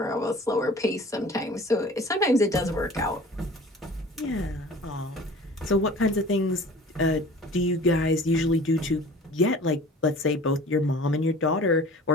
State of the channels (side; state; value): both; normal; correlation 0.44